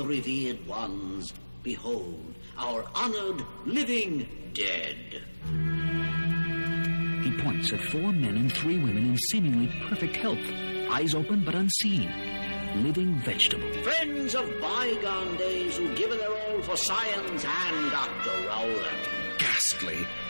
revered ones. Behold, our honored living dead. He points at 4 men and 3 women in seemingly perfect health, eyes open but unseen. Living vegetable. Friends of bygone days who've given their all for science and Dr. Rowland. Ghastly.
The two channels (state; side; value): inverted; both; correlation -1.00